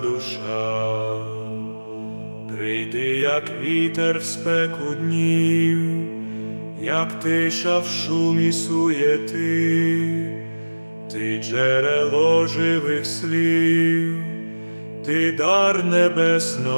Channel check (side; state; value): both; inverted; correlation -1.00